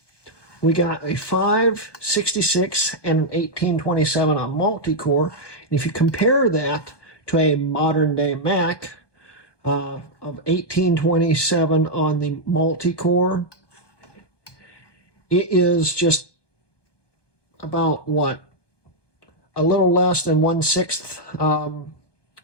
we got a 566 and an 1827 on multi-core. And if you compare that to a modern day Mac of 1827 on the multi-core, it is just about what? A little less than 1/6,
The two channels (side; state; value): right; late; 1.2 ms